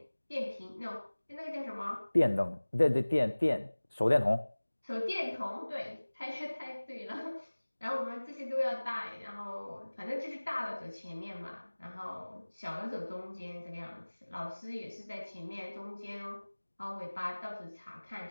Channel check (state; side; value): inverted; both; correlation -1.00